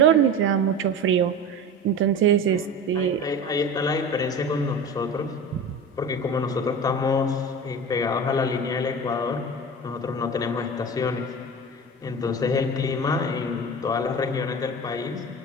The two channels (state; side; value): normal; both; correlation 0.31